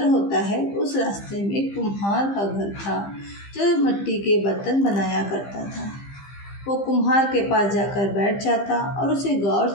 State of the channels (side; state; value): right; late; 15 ms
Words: होता है उस रास्ते में एक कुम्हार का घर था जो मिट्टी के बर्तन बनाया करता था। वो कुम्हार के पास जाकर बैठ जाता और उसे गौर